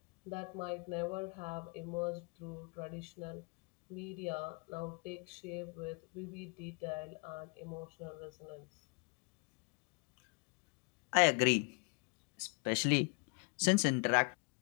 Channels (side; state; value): right; quieter; 33.8 dB